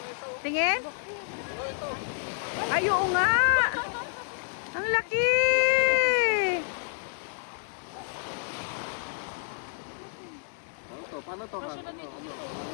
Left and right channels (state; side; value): silent; right; digital silence